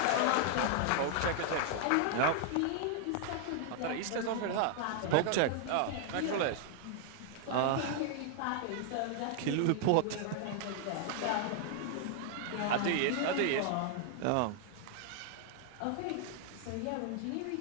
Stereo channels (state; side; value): different; both; correlation 0.00